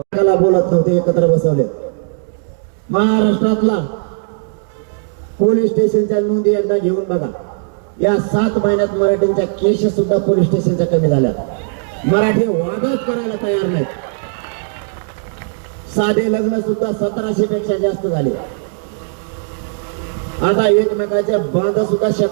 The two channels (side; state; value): left; silent; digital silence